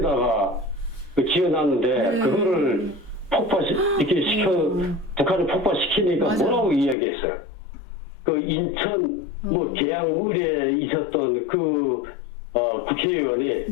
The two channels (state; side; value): drops out; right; at 7.0 s